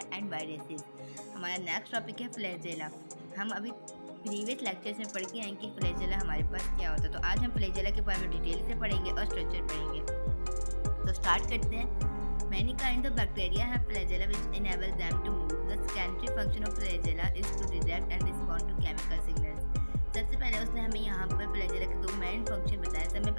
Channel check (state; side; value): inverted; both; correlation -1.00